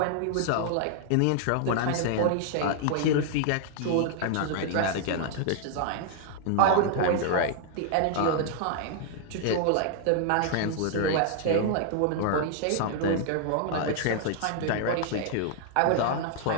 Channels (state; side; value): different; both; correlation 0.00